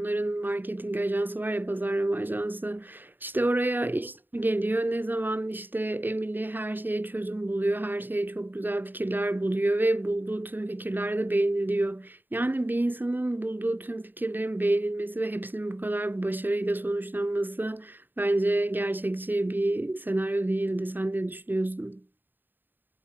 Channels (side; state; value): left; late; 0.092 ms